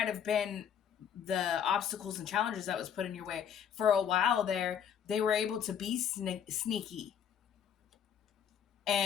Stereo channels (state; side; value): quieter; right; 8.5 dB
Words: have been the obstacles and challenges that was put in your way. For a while there, they were able to be sneaky